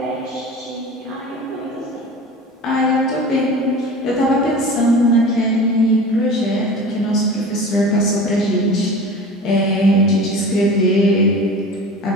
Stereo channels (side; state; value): both; normal; correlation 0.36